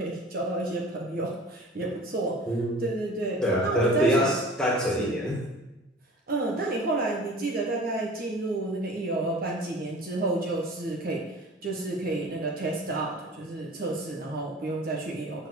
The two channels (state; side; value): normal; both; correlation 0.43